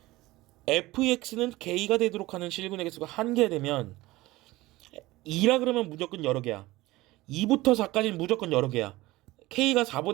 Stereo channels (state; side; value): quieter; left; 19.0 dB